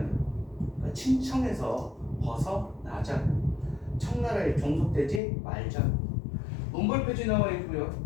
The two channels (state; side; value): drops out; right; at 5.2 s